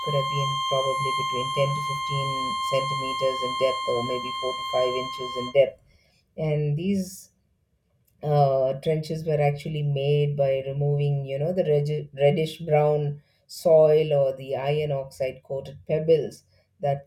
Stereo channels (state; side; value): identical; both; correlation 1.00